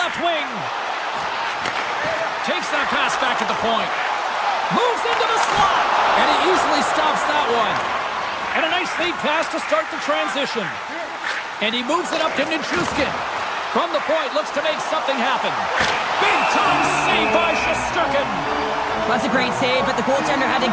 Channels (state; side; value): identical; both; correlation 1.00